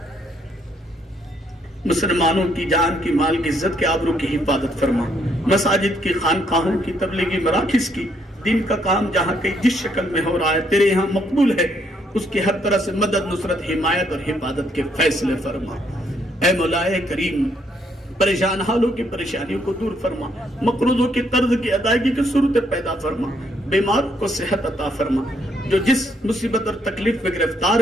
مسلمانوں کی جان کی، مال کی، عزت کے، آبرو کی حفاظت فرما۔ مساجد کی، خانقاہوں کی، تبلیغی مراکز کی، دین کا کام جہاں کہیں جس شکل میں ہو رہا ہے تیرے یہاں مقبول ہے، اس کی ہر طرح سے مدد، نصرت، حمایت اور حفاظت کے فیصلے فرما۔ اے مولا کریم، پریشان حالوں کی پریشانیوں کو دور فرما، مقروضوں کی قرض کی ادائیگی کی صورت پیدا فرما، بیماروں کو صحت عطا فرما، جو جس مصیبت اور تکلیف میں گرفتار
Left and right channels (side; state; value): both; normal; correlation 0.71